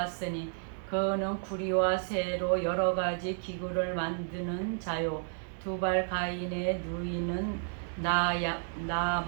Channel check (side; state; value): left; silent; digital silence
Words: 그는 구리와 새로 여러 가지 기구를 만드는 자요 두발 가인의 누이는